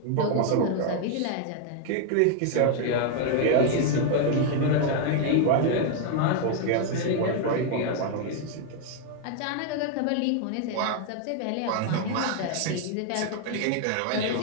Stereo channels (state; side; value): different; both; correlation 0.00